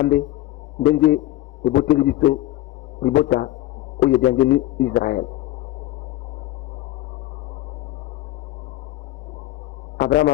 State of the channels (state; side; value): quieter; right; 15.9 dB